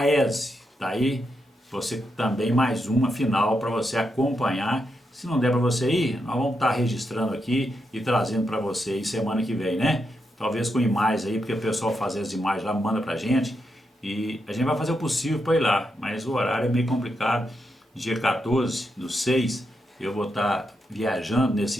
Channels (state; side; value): normal; both; correlation 0.83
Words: Tá aí você também mais uma final para você acompanhar. Se não der para você ir, nós vamos estar registrando aqui e trazendo para você aí semana que vem, né? Talvez com imagens aí, porque o pessoal faz as imagens lá, manda pra gente e a gente vai fazer o possível para ir lá, mas o horário é meio complicado. Dia 14/6 eu vou estar viajando nesse